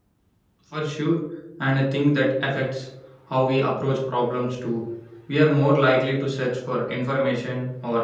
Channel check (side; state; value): both; identical; correlation 1.00